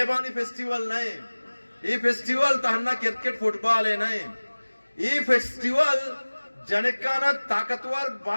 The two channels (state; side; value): inverted; both; correlation -1.00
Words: फेस्टिवल नहीं ये फेस्टिवल तहन्ना क्रिकेट फुटबॉल है नहीं ये फेस्टिवल जनकाना ताकतवर